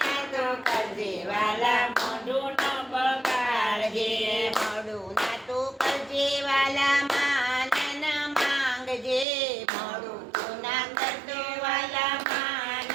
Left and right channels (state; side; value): drops out; left; at 9.2 s